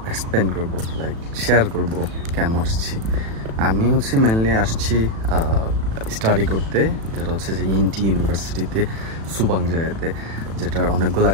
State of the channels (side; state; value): left; late; 36 ms